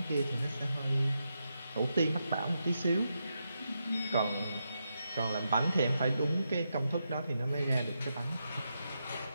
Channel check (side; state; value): both; inverted; correlation -0.85